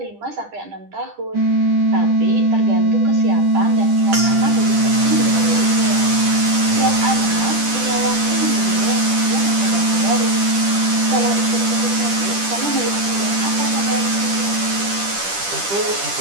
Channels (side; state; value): left; late; 10 ms